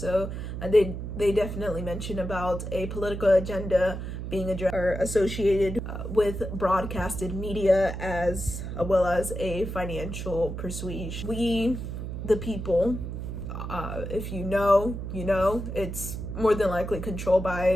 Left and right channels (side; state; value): right; noise; hum, 6 dB below the sound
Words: they definitely mention about a political agenda being addressed or associated with broadcasted media, as well as a financial persuasion. We, the people, if you know, it's more than likely controlled